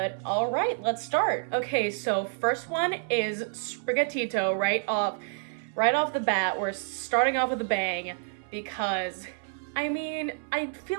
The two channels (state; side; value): silent; left; 59 dB below the other